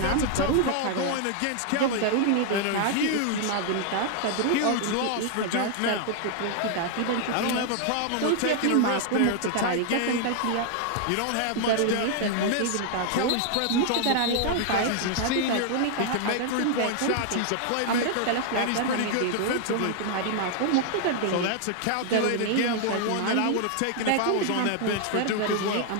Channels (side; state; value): both; different; correlation 0.00